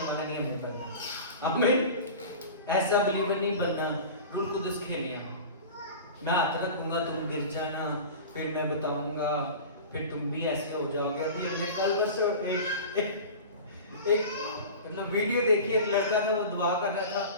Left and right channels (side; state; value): both; inverted; correlation -0.35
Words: والا نہیں ہمیں بننا. ہمیں ایسا بلیور نہیں بننا روح القدس کھیلے. میں ہاتھ رکھوں گا تم گر جانا, پھر میں بتاؤں گا, پھر تم بھی ایسے ہو جاؤ گے. ابھی ہم نے کل بس ایک مطلب ویڈیو دیکھی, ایک لڑکا تھا وہ دعا کر رہا تھا